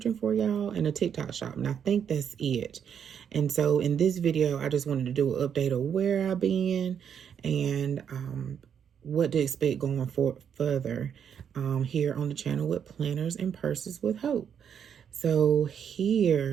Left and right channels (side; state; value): left; quieter; 8.0 dB